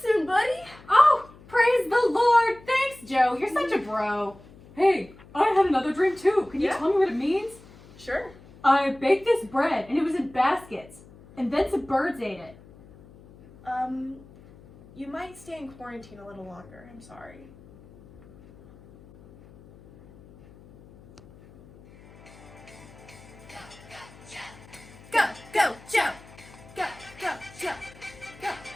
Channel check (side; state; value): left; noise; hum, 22 dB below the sound